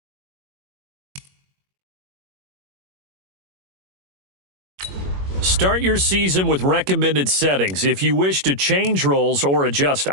Start your season with recommended settings. If you wish to change roles or adjust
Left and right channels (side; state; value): left; late; 21 ms